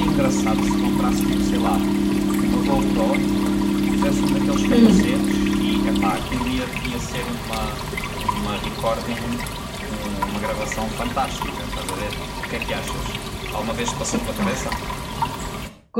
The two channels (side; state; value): both; identical; correlation 1.00